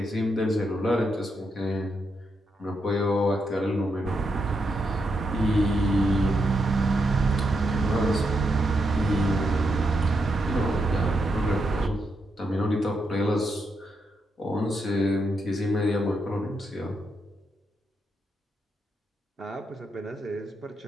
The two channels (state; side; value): normal; both; correlation 0.81